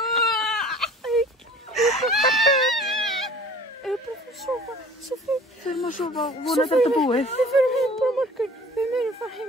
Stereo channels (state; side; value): normal; both; correlation 0.47